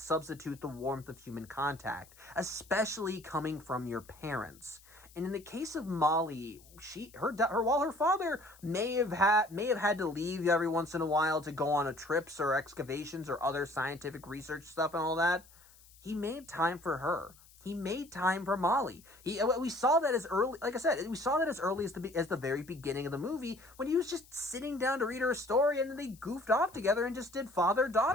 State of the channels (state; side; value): noise; left; hiss, 25 dB below the sound